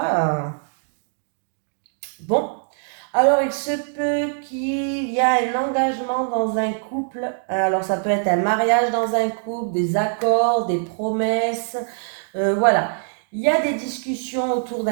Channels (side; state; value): left; silent; digital silence